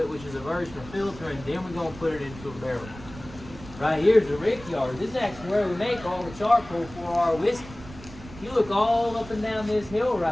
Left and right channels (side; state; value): right; noise; rumble, 16 dB below the sound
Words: which is a version of filter, and then we're gonna put it into a barrel. Right here's the rickyard. This is actually where we make all the charcoal for our whiskey. You look all up and down this hill